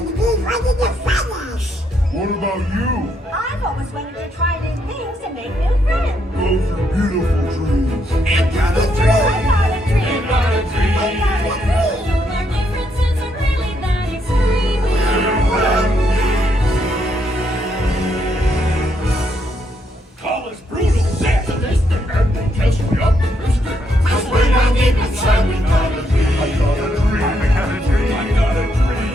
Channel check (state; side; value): normal; both; correlation 0.76